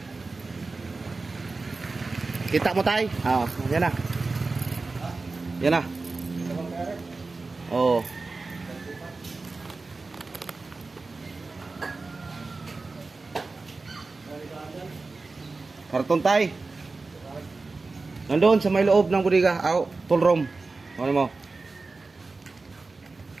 Kita mo tay? Oo, yan na. Yan na. Oo. Karton tay. Nandoon sa may loob ng bodega. Tool room. Ano mo?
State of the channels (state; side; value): quieter; left; 3.7 dB